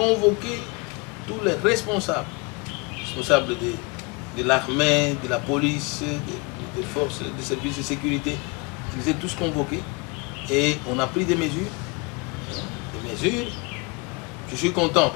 tous les responsables de l'armée, de la police, des forces, des services de sécurité. Ils étaient tous convoqués et on a pris des mesures. Je suis content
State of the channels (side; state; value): right; quieter; 29.1 dB